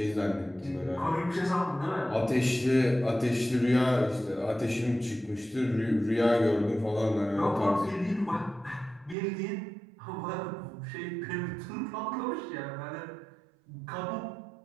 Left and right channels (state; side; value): drops out; left; at 9.2 s